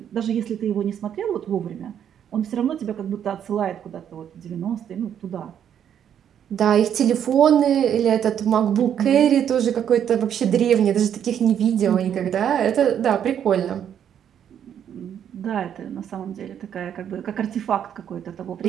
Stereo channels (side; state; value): left; quieter; 9.2 dB